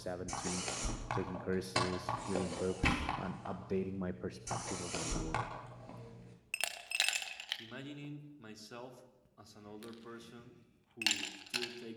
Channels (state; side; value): identical; both; correlation 1.00